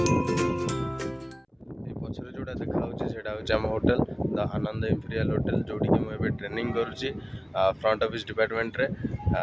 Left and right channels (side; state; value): both; identical; correlation 1.00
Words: पछरे जोटा देखा आम hotel the Anand imperial hotel जोटी कि मुझे ट्रेनिंग करुच्ची फ्रंट ऑफिस डिपार्टमेंट रे।